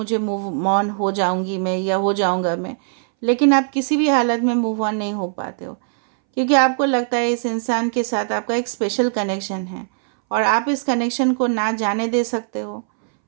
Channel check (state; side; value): silent; left; 63 dB below the other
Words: मूव ऑन हो जाऊंगी मैं या हो जाऊंगा मैं, लेकिन आप किसी भी हालत में मूव ऑन नहीं हो पाते हो, क्योंकि आपको लगता है इस इंसान के साथ आपका एक स्पेशल कनेक्शन है और आप इस कनेक्शन को ना जाने दे सकते हो,